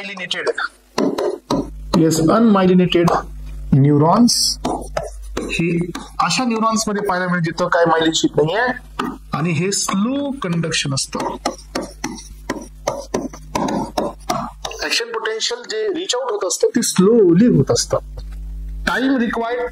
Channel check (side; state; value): both; identical; correlation 1.00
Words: neurons. हे अशा न्यूरॉन्स मध्ये पाहायला मिळेल जिथं काय मायलिन शीथ नाहीये. आणि हे स्लो कंडक्शन असतं. ऍक्शन पोटेन्शियल जे रिच आउट होत असतं ते स्लोली होत असतं. Time required